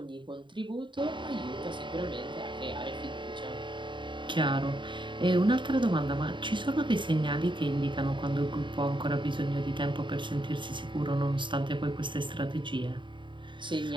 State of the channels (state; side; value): late; left; 0.23 ms